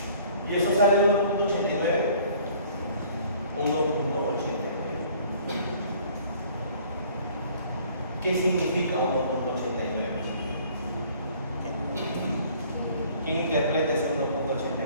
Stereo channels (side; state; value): both; inverted; correlation -0.55